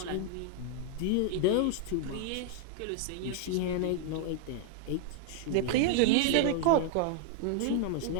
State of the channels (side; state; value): both; different; correlation 0.00